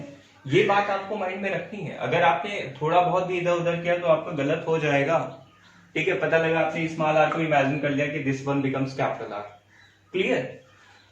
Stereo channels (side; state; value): both; identical; correlation 1.00